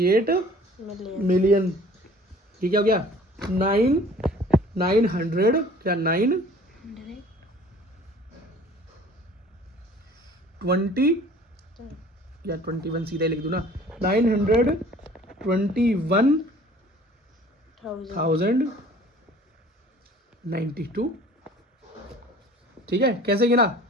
ये क्या हो गया? 900 क्या 920 या 21 सीधे लिख दूं ना। 921,092। ठीक है, कैसे गिना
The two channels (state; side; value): normal; both; correlation 0.50